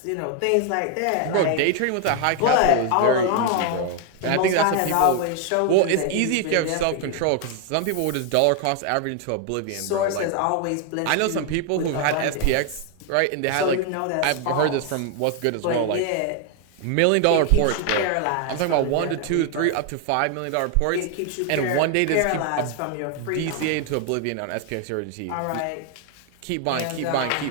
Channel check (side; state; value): both; different; correlation 0.00